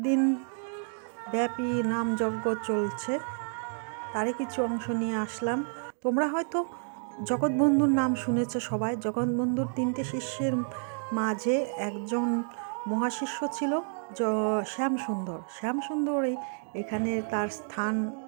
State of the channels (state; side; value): silent; left; 58 dB below the other